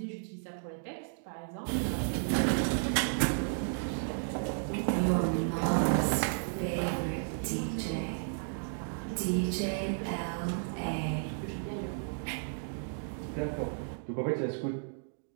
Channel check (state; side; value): silent; left; digital silence